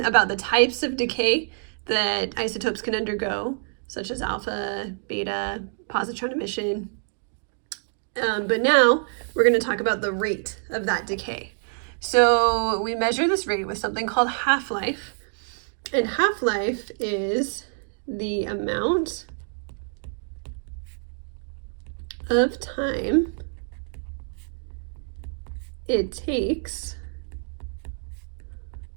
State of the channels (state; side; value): silent; left; 61 dB below the other